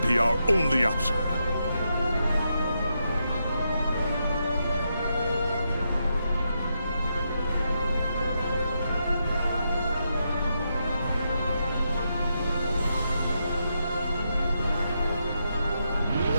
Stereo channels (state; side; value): inverted; both; correlation -0.83